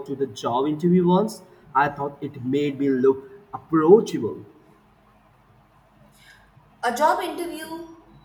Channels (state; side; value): identical; both; correlation 1.00